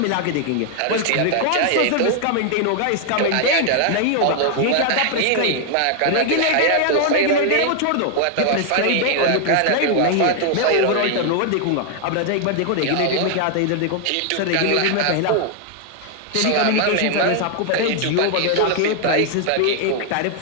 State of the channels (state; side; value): different; both; correlation 0.00